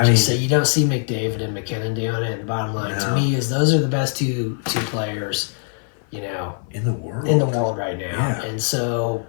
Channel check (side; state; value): right; silent; 55 dB below the other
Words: would say you don't see McDavid and McKinnon doing it. And the bottom line to me is those are the best two players, in the world right now. Yeah. And so,